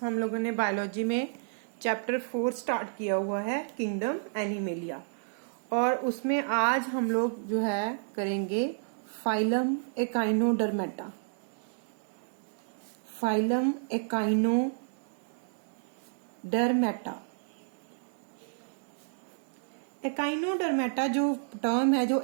हम लोगों ने बायोलॉजी में चैप्टर 4 स्टार्ट किया हुआ है, किंगडम एनिमेलिया, और उसमें आज हम लोग जो है करेंगे phylum echinodermata. Phylum echinodermata. Echinodermata जो टर्म है, जो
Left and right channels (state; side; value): silent; left; digital silence